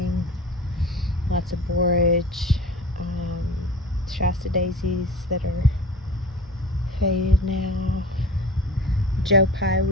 Lots of borage, Shasta daisies that are faded now. Joe Pye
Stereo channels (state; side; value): normal; both; correlation 0.38